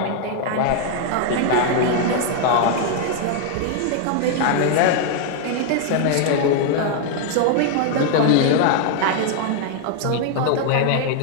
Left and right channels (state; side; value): different; both; correlation 0.00